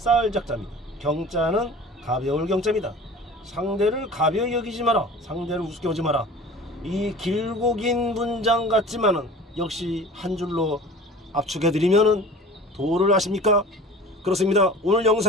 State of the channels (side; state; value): both; normal; correlation 0.41